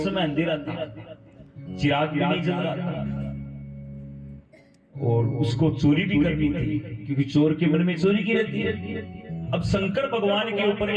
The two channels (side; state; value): both; identical; correlation 1.00